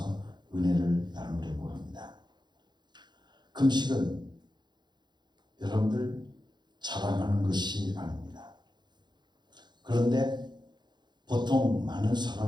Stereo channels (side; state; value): left; late; 0.21 ms